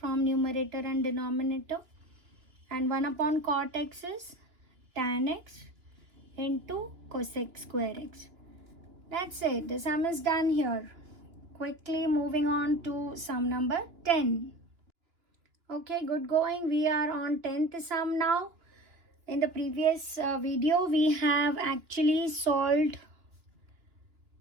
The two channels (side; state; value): left; late; 2.9 ms